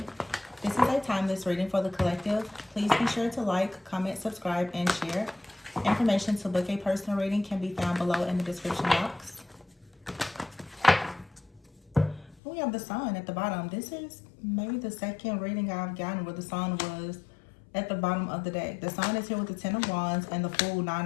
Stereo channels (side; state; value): right; drops out; at 12.4 s